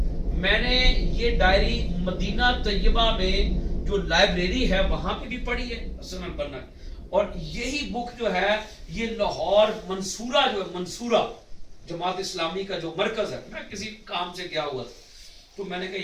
میں نے یہ ڈائری مدینہ طیبہ میں جو لائبریری ہے وہاں پہ بھی پڑھی ہے حسن البنا کی. اور یہی بک جو ہے یہ لاہور منصورہ جو ہے، منصورہ جماعت اسلامی کا جو مرکز ہے، میں کسی کام سے گیا ہوا تھا تو میں نے کہا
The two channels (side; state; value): both; identical; correlation 1.00